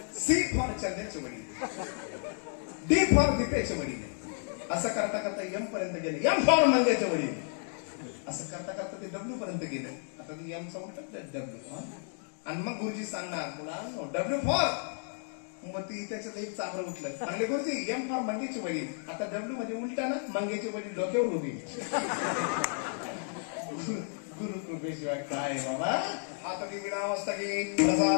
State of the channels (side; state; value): right; silent; 56 dB below the other